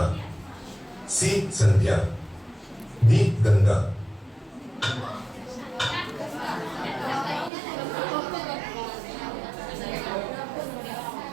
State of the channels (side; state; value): left; drops out; at 7.5 s